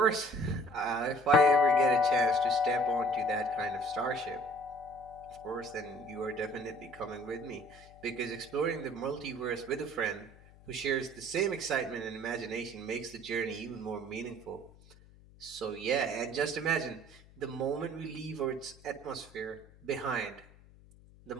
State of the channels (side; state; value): left; noise; hum, 24 dB below the sound